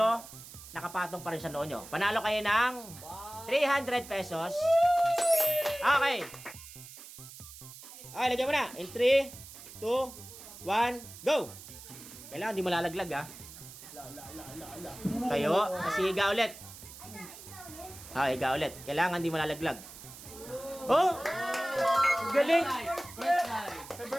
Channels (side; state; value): right; noise; hiss, 15 dB below the sound